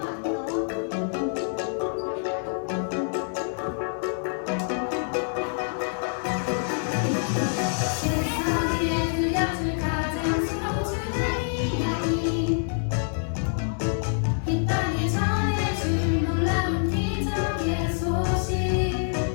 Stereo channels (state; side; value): silent; right; digital silence